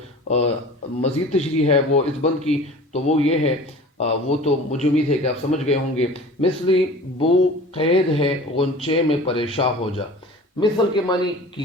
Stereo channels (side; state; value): both; normal; correlation 0.41